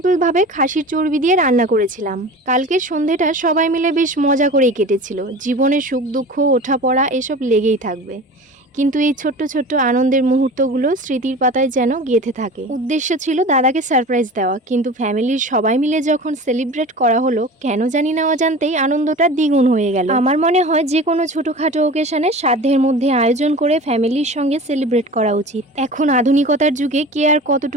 ভাবে খাসির চর্বি দিয়ে রান্না করেছিলাম। কালকের সন্ধেটা সবাই মিলে বেশ মজা করেই কেটেছিল। জীবনে সুখ দুঃখ ওঠাপড়া এসব লেগেই থাকবে, কিন্তু এই ছোট্ট ছোট্ট আনন্দের মুহূর্তগুলো স্মৃতির পাতায় যেন গেঁথে থাকে। উদ্দেশ্য ছিল দাদাকে সারপ্রাইজ দেওয়া, কিন্তু ফ্যামিলির সবাই মিলে যখন সেলিব্রেট করা হলো, কেন জানি না অজান্তেই আনন্দটা দ্বিগুণ হয়ে গেল। আমার মনে হয় যে কোনো ছোটখাটো ওকেশনে সাধ্যের মধ্যে আয়োজন করে ফ্যামিলির সঙ্গে সেলিব্রেট করা উচিত। এখন আধুনিকতার যুগে কে আর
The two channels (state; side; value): normal; both; correlation 0.36